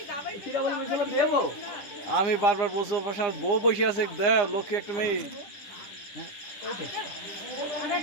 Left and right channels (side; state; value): right; late; 9.8 ms